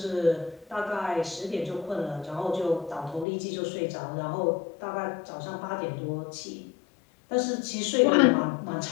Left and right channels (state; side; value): drops out; right; at 3.2 s